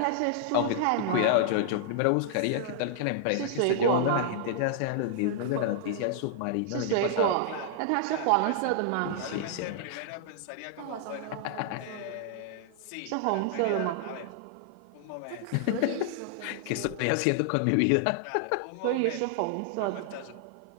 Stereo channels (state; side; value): different; both; correlation -0.01